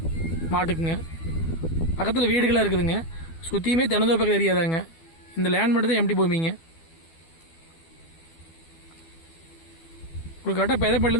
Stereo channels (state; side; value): late; right; 12 ms